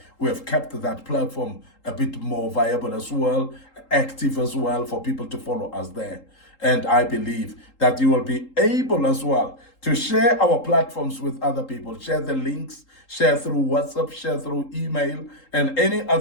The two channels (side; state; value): right; late; 3.8 ms